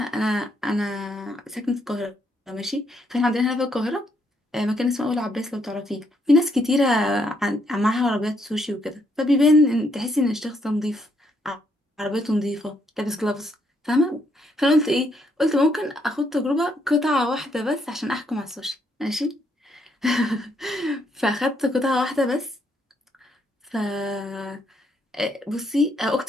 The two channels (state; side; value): normal; both; correlation 0.74